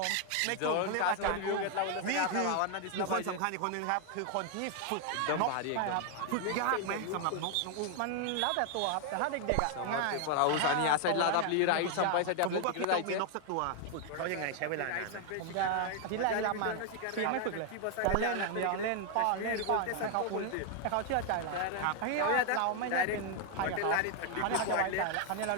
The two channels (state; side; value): different; both; correlation 0.00